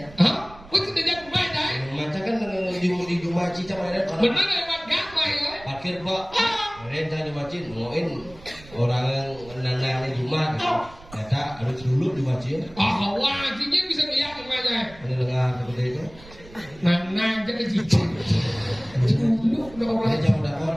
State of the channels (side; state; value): right; noise; rumble, 20 dB below the sound